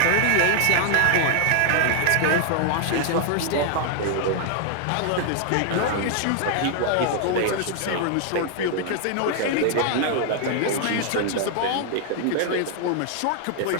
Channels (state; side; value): different; both; correlation 0.00